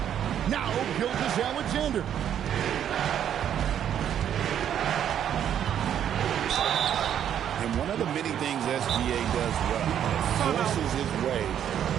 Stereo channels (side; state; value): left; quieter; 9.7 dB